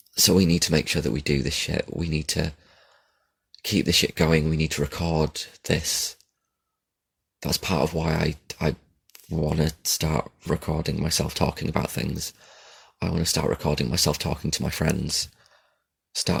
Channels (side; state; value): both; identical; correlation 1.00